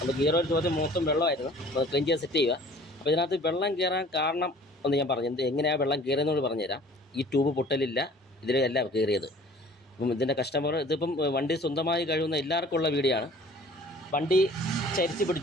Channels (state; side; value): normal; both; correlation 0.50